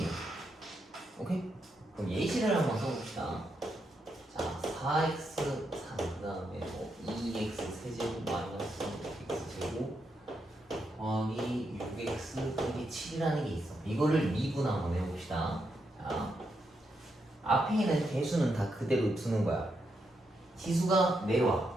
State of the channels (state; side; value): normal; both; correlation 0.82